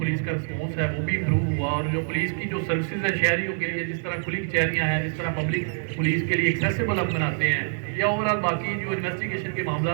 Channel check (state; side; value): silent; left; 60 dB below the other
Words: کا رسپانس ہے وہ بھی امپروو ہوا، اور جو پولیس کی جو سروسز ہیں شہریوں کے لیے، جس طرح کھلی کچہریاں ہیں، جس طرح پبلک پولیس کے لیے ایکسیسیبل ہم بناتے ہیں، یا اوورآل باقی جو انویسٹیگیشن کے